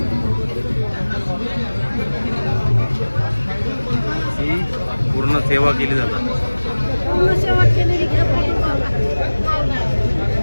ही पूर्ण सेवा केली जातात.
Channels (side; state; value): both; inverted; correlation -1.00